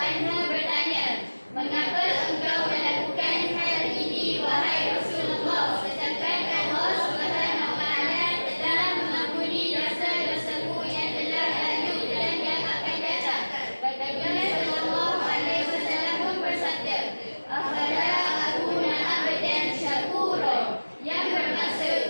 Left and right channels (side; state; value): both; inverted; correlation -1.00